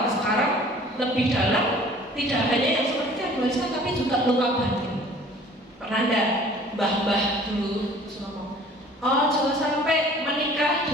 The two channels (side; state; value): both; normal; correlation 0.50